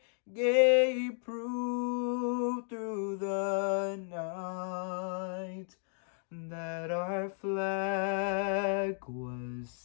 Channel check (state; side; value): silent; right; 55 dB below the other